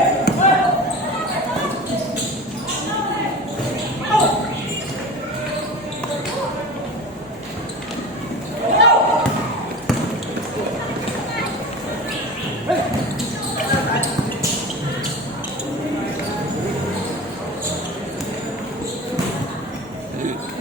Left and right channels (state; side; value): normal; both; correlation 0.33